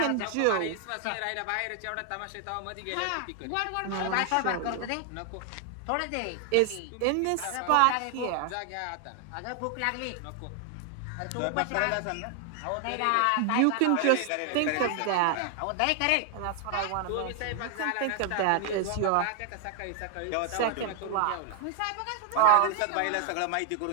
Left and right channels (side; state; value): both; different; correlation 0.00